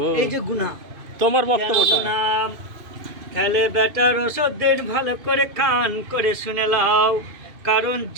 এই যে গুনাহ, তোমার বক্তব্যটা। তাহলে বেটার ওষুধ দিন, ভালো করে কান করে শুনে লাও। কারণ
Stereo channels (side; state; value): left; late; 2.5 ms